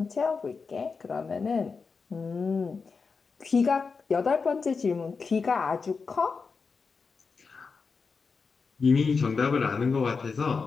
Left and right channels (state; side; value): quieter; right; 4.9 dB